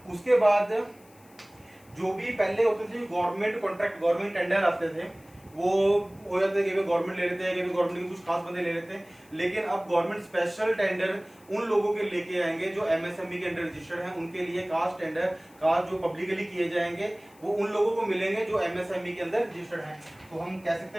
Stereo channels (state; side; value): noise; left; hiss, 28 dB below the sound